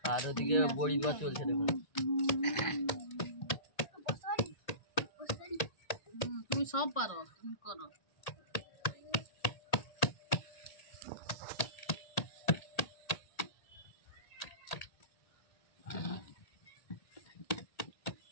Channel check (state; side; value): late; right; 1.8 ms